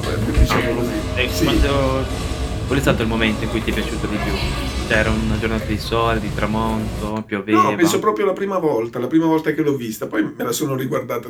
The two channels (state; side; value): identical; both; correlation 1.00